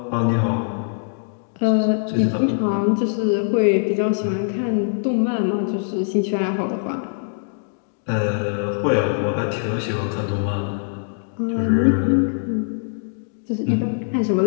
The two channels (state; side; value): silent; right; digital silence